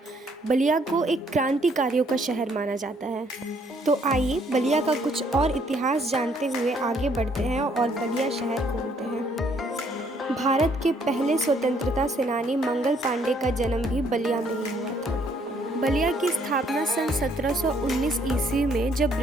बलिया को एक क्रांतिकारियों का शहर माना जाता है। तो आइए बलिया का कुछ और इतिहास जानते हुए आगे बढ़ते हैं और बलिया शहर घूमते हैं। भारत के पहले स्वतंत्रता सेनानी मंगल पांडे का जन्म भी बलिया में ही हुआ था। बलिया की स्थापना सन 1719 ईस्वी में जब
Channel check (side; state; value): both; normal; correlation 0.66